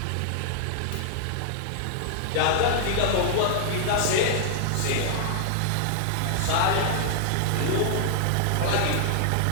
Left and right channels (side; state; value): both; different; correlation 0.00